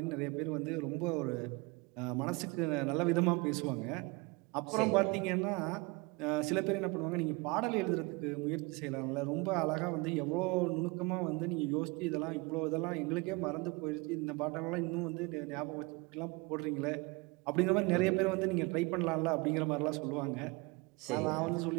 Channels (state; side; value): quieter; left; 26.3 dB